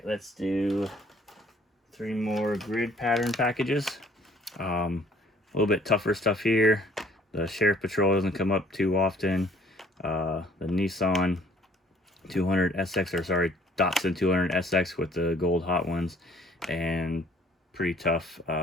let's do 3 more grid pattern packages. A little bit tougher stuff here. The Sheriff Patrol doesn't come up too often. The Nissan 200 SX, or sorry, Datsun 200 SX with the gold hot ones, and pretty tough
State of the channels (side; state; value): both; normal; correlation 0.58